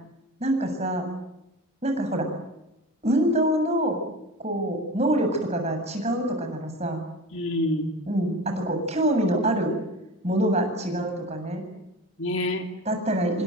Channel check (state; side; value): normal; both; correlation 0.33